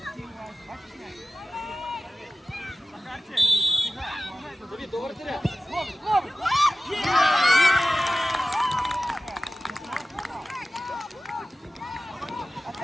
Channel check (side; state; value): both; normal; correlation 0.96